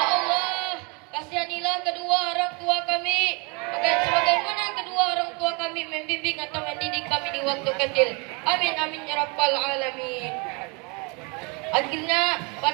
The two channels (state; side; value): quieter; left; 30.2 dB